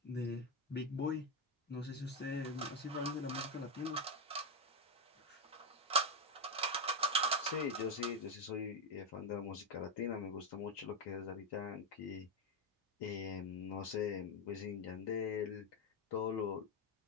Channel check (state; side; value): normal; both; correlation 0.06